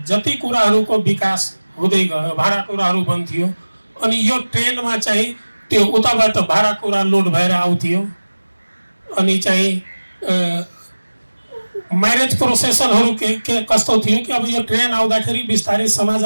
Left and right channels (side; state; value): both; inverted; correlation -1.00